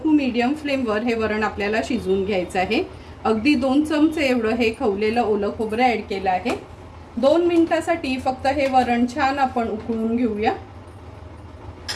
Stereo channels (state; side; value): identical; both; correlation 1.00